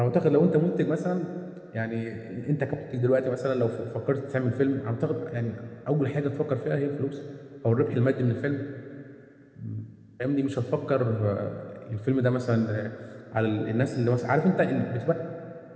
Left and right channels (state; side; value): identical; both; correlation 1.00